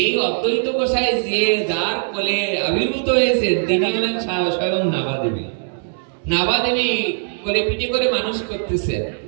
অদ্বৈত গোসাই যে যার কোলে আবির্ভূত হয়েছে, তিনি হলেন স্বয়ং নাভাদেবী। নাভাদেবী কোলে পিঠে করে মানুষ করতেছেন।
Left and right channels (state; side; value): silent; left; digital silence